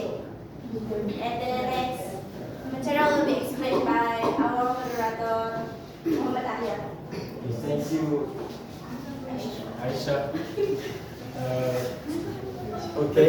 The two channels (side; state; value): both; identical; correlation 1.00